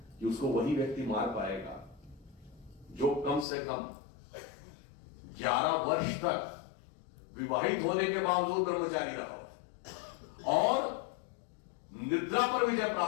कि उसको वही व्यक्ति मार पाएगा जो कम से कम 11 वर्ष तक विवाहित होने के बावजूद ब्रह्मचारी रहा और निद्रा पर विजय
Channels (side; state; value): right; drops out; at 3.5 s